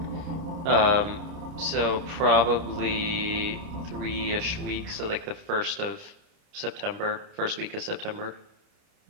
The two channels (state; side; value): late; left; 30 ms